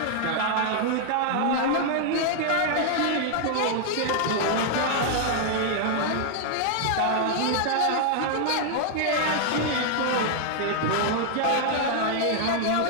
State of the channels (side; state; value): both; different; correlation -0.01